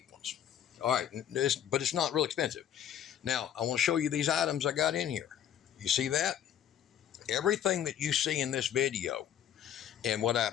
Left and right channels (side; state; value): right; quieter; 10.1 dB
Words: ones. All right, but it's not real expensive. Now, I want to show you these items I got in here. You see that? Everything that you see in this video and what